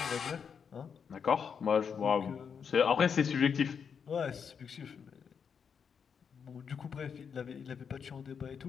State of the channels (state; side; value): quieter; right; 6.8 dB